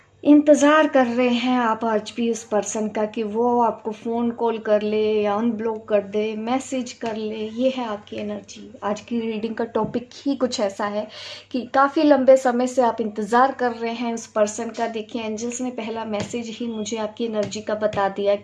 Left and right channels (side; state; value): both; identical; correlation 1.00